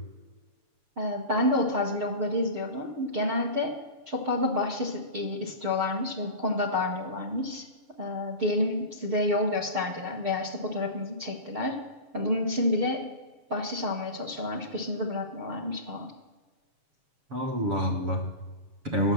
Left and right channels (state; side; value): late; left; 7.1 ms